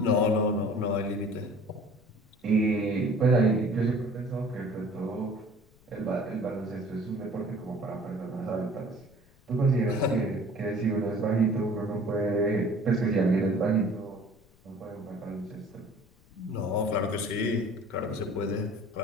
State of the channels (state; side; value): noise; left; rumble, 29 dB below the sound